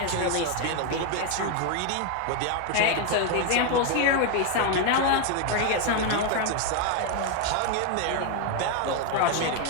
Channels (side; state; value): both; different; correlation 0.01